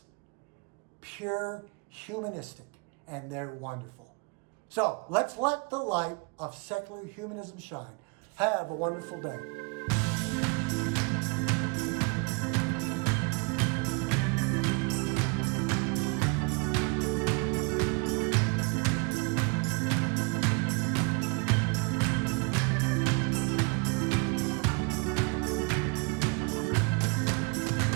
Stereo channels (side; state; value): left; quieter; 32.2 dB